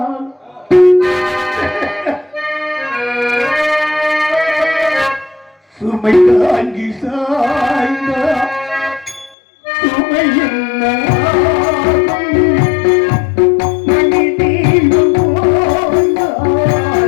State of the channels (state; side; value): drops out; right; at 9.3 s